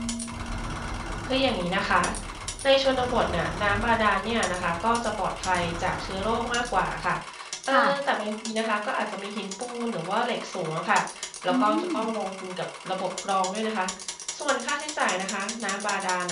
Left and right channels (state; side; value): identical; both; correlation 1.00